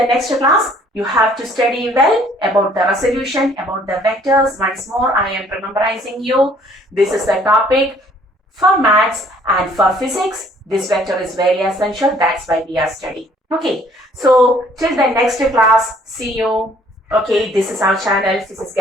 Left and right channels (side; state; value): both; normal; correlation 0.59